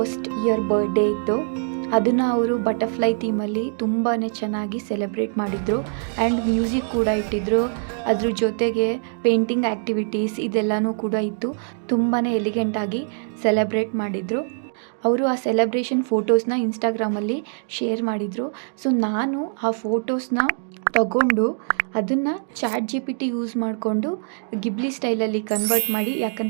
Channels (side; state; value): left; silent; 63 dB below the other